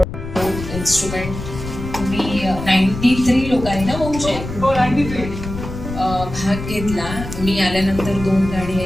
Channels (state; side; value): noise; left; rumble, 8 dB below the sound